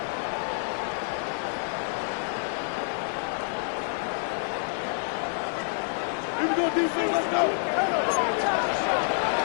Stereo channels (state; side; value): silent; right; 59 dB below the other